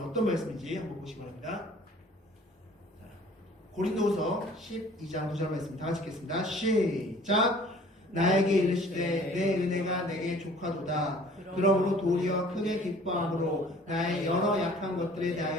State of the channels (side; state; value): both; normal; correlation 0.52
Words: 말씀인지 한번 보시기 바랍니다. 자, 고린도후서 12장 9절 말씀 다 같이 읽겠습니다. 시작. 나에게 이르시되 내 은혜가 내게 족하도다. 그러므로 도리어 크게 기뻐함으로 나의 여러 약한 것들에